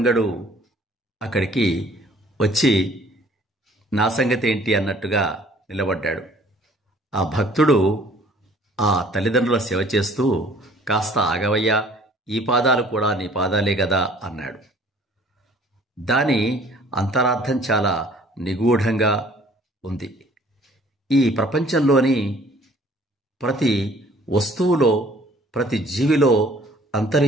అక్కడికి వచ్చి నా సంగతి ఏంటి అన్నట్టుగా నిలబడ్డాడు. ఆ భక్తుడు ఆ తల్లిదండ్రుల సేవ చేస్తూ కాస్త ఆగవయ్యా, ఈ పాదాలు కూడా నీ పాదాలే కదా అన్నాడు. దాని అంతరార్థం చాలా నిగూఢంగా ఉంది. ఈ ప్రపంచంలోని ప్రతి వస్తువులో, ప్రతి జీవిలో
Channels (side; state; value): both; normal; correlation 0.55